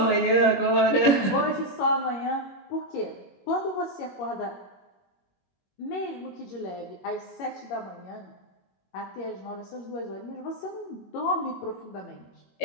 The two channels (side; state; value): right; late; 21 ms